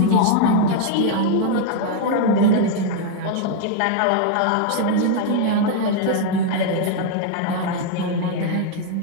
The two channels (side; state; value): both; different; correlation 0.00